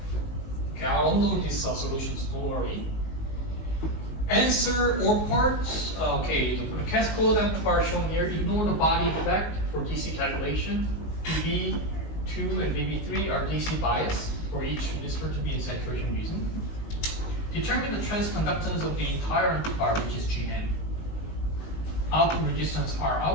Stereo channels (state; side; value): late; right; 19 ms